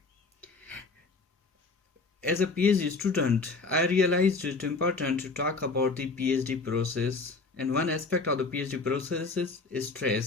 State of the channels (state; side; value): quieter; right; 4.0 dB